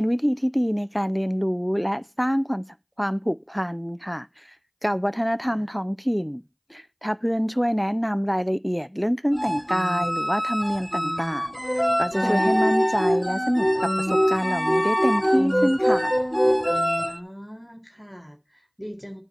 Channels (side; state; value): both; identical; correlation 1.00